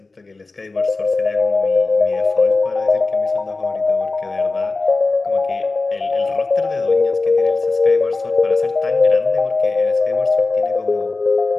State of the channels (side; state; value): right; quieter; 3.6 dB